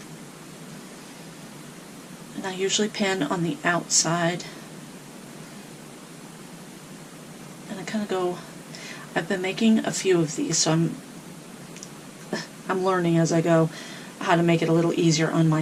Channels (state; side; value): identical; both; correlation 1.00